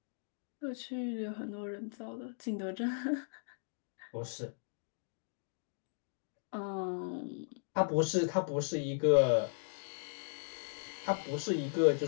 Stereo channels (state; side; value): silent; right; digital silence